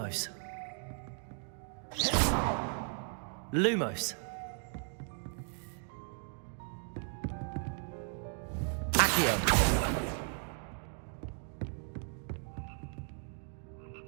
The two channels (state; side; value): silent; left; 54 dB below the other